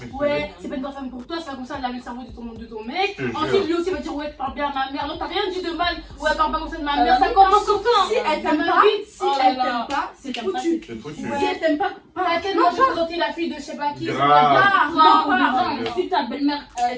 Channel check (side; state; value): both; identical; correlation 1.00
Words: Ouais, c'est pas une bonne femme pour toi, c'est pas comme ça, elle lave le cerveau de ton mec. Je te Ensuite, jure. lui aussi va dire, ouais, tu parles bien à ma mère. Non, t'as rien dit de mal. Ouais, parle pas comme ça de ma Ah, mère. Ça oui, commence comme ça. Si elle t'aime Ça pas, va vite. si Oh là elle là. t'aime pas, c'est Si t'aimes pas, foutu. C'est foutu. Si elle t'aime pas, À quel moment j'ai présenté la fille de je sais pas qui. Grave. Non, si ta belle-mère